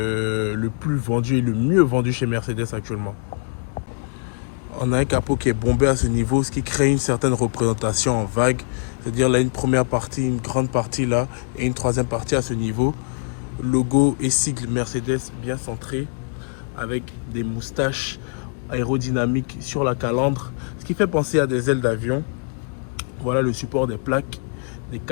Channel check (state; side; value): quieter; right; 39.4 dB